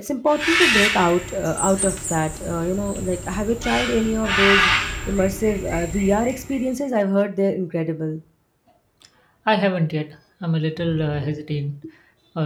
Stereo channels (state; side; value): identical; both; correlation 1.00